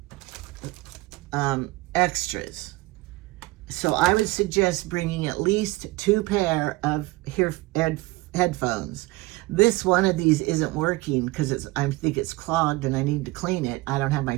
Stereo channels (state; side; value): quieter; left; 21.1 dB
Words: extras. So I would suggest bringing at least 2 pair of headphones. This one of these isn't working because I think it's clogged and I need to clean it. I don't have my